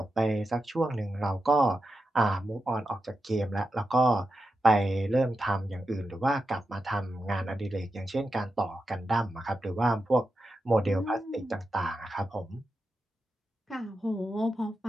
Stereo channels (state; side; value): normal; both; correlation 0.89